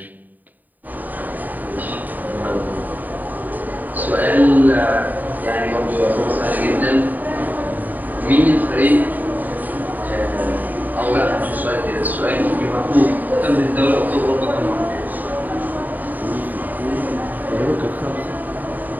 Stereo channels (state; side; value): late; left; 0.085 ms